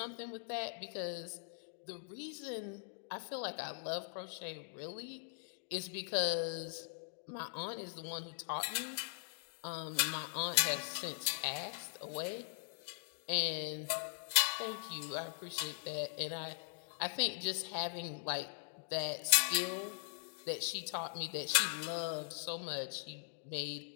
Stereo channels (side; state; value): right; silent; digital silence